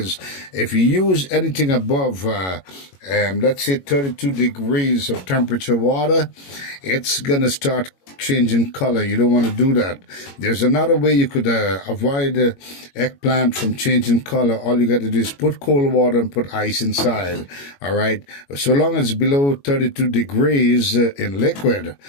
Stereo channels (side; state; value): right; late; 21 ms